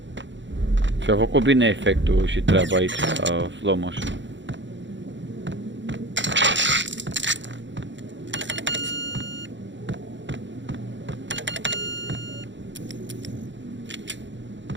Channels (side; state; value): left; late; 0.54 ms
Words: Și-a făcut bine efectul și treaba aici, la slow motion.